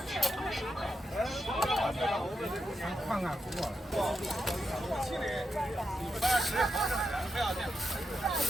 看看不错了。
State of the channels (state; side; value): normal; both; correlation 0.85